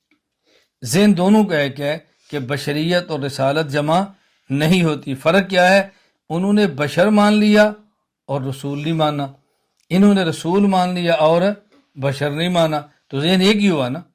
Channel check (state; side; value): identical; both; correlation 1.00